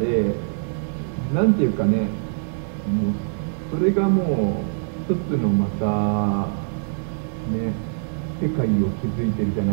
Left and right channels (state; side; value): silent; left; digital silence